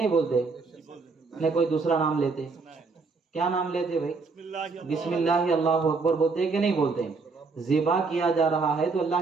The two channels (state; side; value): quieter; left; 4.3 dB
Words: بولتے؟ نہیں کوئی دوسرا نام لیتے؟ کیا نام لیتے بھائی؟ بسم اللہ اللہ اکبر بولتے کہ نہیں بولتے؟ ذبح کیا جا رہا ہے تو